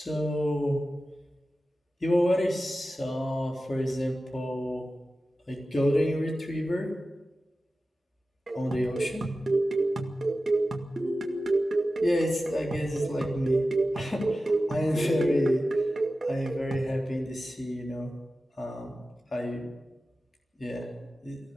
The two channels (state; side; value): normal; both; correlation 0.94